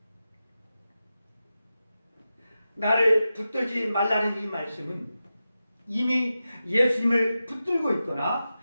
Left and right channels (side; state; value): both; inverted; correlation -0.92